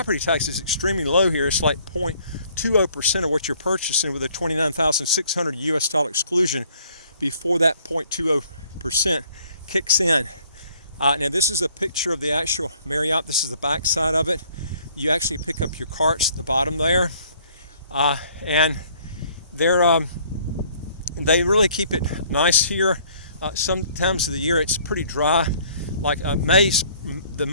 tax is extremely low here. It's like 0.20% of what you're purchasing, with a $29,600 US exclusion before that 0.20% kicks in. Now this is a picture of the actual Marriott. This is the back side of it. You actually pick up your carts at the bottom there, and they really keep it nice here. Sometimes of the year it's pretty dry. Like the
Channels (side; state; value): both; inverted; correlation -0.60